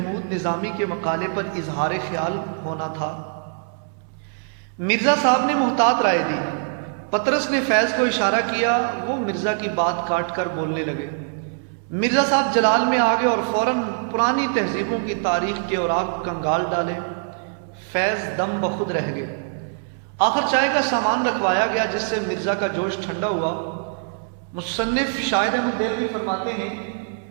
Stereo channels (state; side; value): silent; left; 63 dB below the other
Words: نظامی کے مقالے پر اظہار خیال ہونا تھا۔ مرزا صاحب نے محتاط رائے دی۔ پطرس نے فیض کو اشارہ کیا، وہ مرزا کی بات کاٹ کر بولنے لگے۔ مرزا صاحب جلال میں آ گئے اور فوراً پرانی تہذیبوں کی تاریخ کے اوراق کنگال ڈالے۔ فیض دم بخود رہ گئے۔ آخر چائے کا سامان رکھوایا گیا، جس سے مرزا کا جوش ٹھنڈا ہوا۔ مصنف شاہد احمد دہلوی فرماتے ہیں